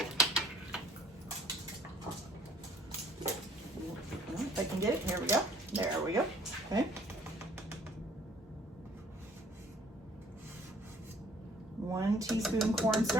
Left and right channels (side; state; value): both; normal; correlation 0.57